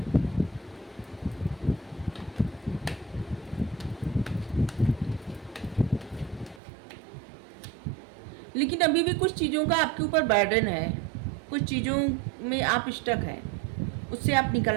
लेकिन अभी भी कुछ चीज़ों का आपके ऊपर बर्डन है, कुछ चीज़ों में आप स्टक हैं, उससे आप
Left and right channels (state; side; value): drops out; left; at 6.6 s